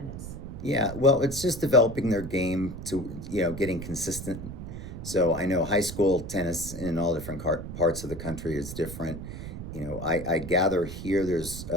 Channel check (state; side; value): noise; right; rumble, 9 dB below the sound